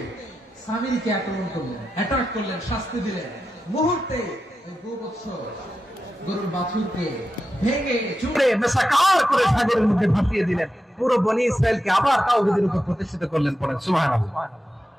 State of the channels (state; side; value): normal; both; correlation 0.90